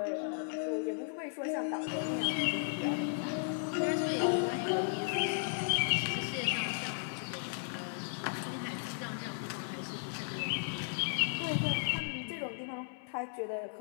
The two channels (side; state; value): right; silent; 54 dB below the other